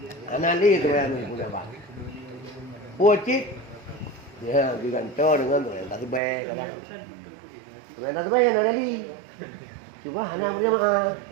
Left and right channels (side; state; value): left; drops out; at 6.2 s